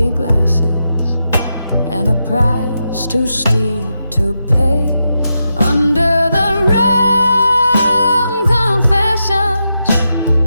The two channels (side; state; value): both; inverted; correlation -0.86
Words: glasses and a price too steep to pay. Under the rum confessions,